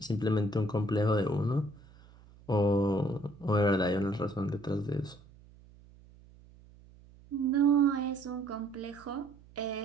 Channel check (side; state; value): right; noise; hum, 24 dB below the sound